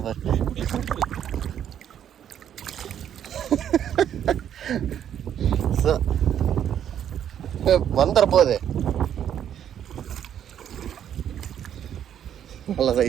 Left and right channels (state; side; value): quieter; left; 9.7 dB